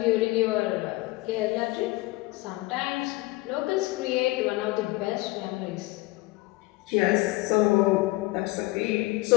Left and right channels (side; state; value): right; quieter; 21.5 dB